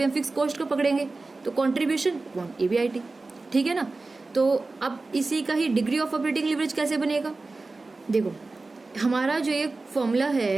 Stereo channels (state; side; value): quieter; left; 3.5 dB